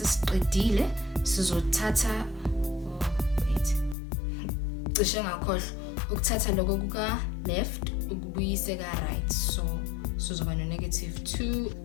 sizothatha cishe ngakhohlwa ukuthatha lokho kuka left ukubuyise ka right. So sizoba no negative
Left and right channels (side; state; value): right; drops out; at 4.0 s